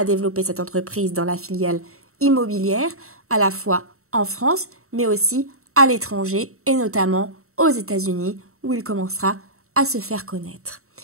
développer cette entreprise dans la filiale immobilière, à la fois en France, mais aussi à l'étranger, et notamment aux États-Unis, où il commencera à se faire connaître.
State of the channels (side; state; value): left; late; 0.63 ms